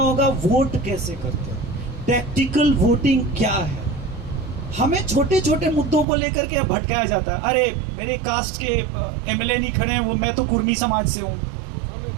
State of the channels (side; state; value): left; drops out; at 6.1 s